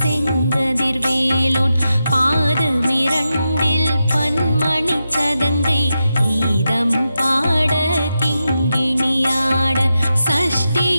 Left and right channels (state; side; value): inverted; both; correlation -0.89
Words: செங்கதிர்வேலோன், பாதமிரண்டில் பன்மணி சதங்கை கீதம் பாட கிங்கிணியாட.